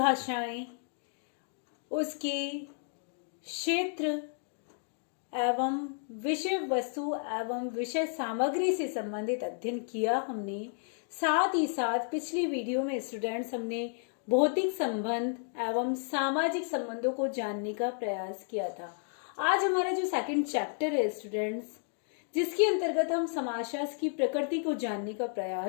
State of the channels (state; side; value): silent; right; 56 dB below the other